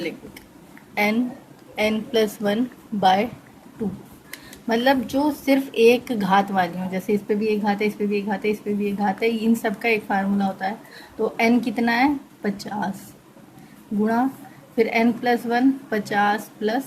देते n+1/2। मतलब जो सिर्फ एक घात वाली हो, जैसे इस पे भी एक घात है, इस पे भी एक घात है, इस पे भी एक घात है, इन सब का एक फार्मूला होता है। तो n कितना है 50 गुणा फिर n+1 50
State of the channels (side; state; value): both; identical; correlation 1.00